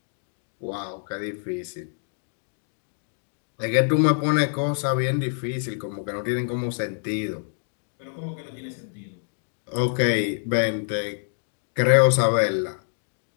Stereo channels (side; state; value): right; silent; digital silence